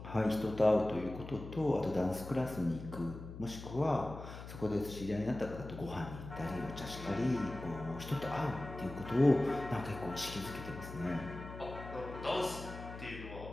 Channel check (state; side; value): noise; left; hum, 11 dB below the sound